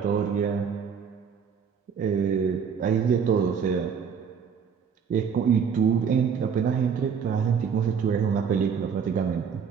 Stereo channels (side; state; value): left; quieter; 6.8 dB